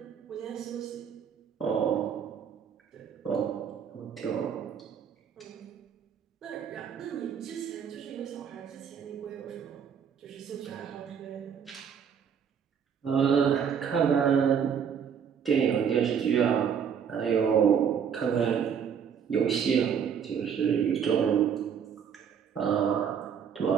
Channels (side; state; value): left; quieter; 7.5 dB